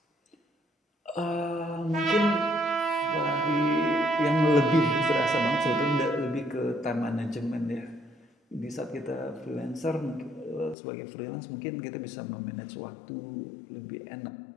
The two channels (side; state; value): right; drops out; at 10.8 s